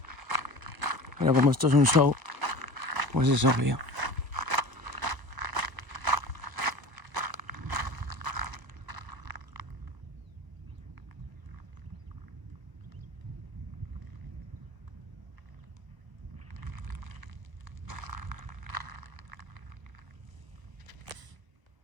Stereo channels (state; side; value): late; left; 1.0 ms